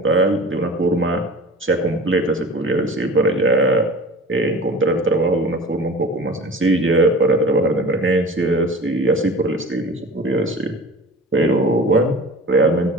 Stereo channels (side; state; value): both; normal; correlation 0.38